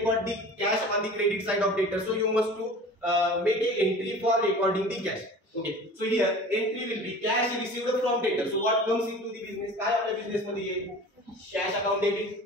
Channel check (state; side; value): normal; both; correlation 0.41